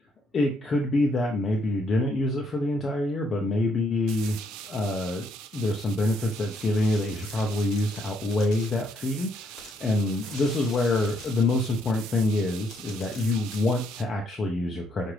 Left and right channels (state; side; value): normal; both; correlation 0.72